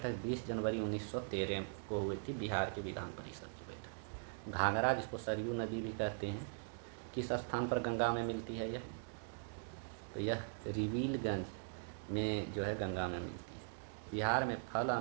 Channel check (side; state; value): left; silent; digital silence